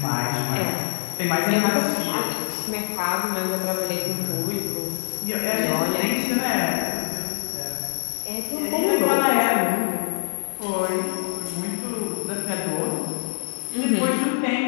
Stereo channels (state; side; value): silent; right; digital silence